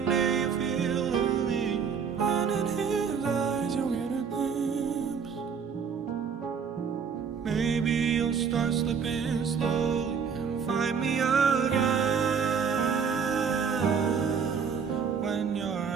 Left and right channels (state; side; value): quieter; left; 6.4 dB